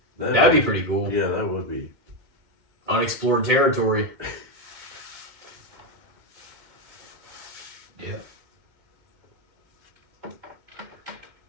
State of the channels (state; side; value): late; left; 2.2 ms